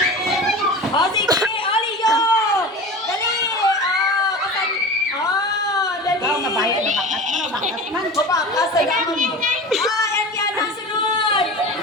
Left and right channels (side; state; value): both; normal; correlation 0.33